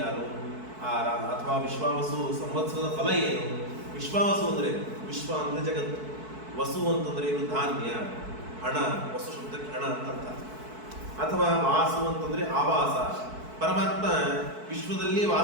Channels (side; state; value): left; late; 4.6 ms